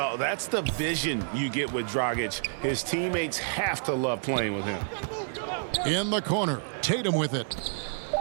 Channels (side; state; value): left; silent; 59 dB below the other